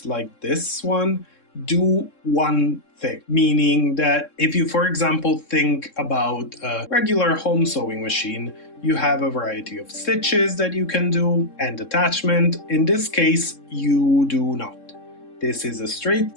like this one do one thing, meaning that if you, for example, think about a regular home sewing machine, you have a variety of stitches that you can do and attachment. In this case, you do not. This is a straight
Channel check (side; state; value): right; late; 3.7 ms